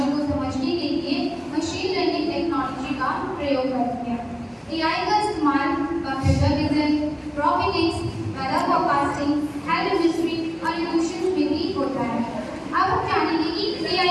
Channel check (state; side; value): identical; both; correlation 1.00